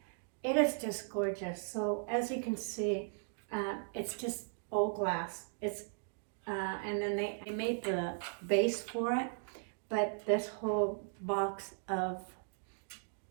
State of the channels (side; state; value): left; silent; digital silence